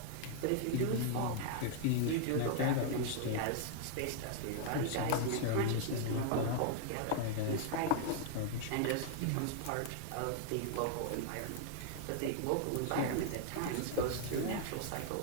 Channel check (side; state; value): both; different; correlation 0.00